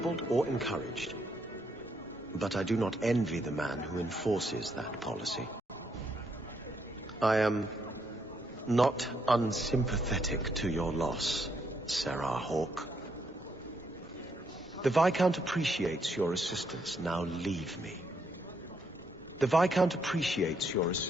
or encouraged. But I do not envy the man who enforces that policy. I am not unsympathetic to your loss, Sarah Hawke. The Viscount appreciates your assistance. Now leave me. The Viscount appreciates your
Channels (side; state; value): both; normal; correlation 0.75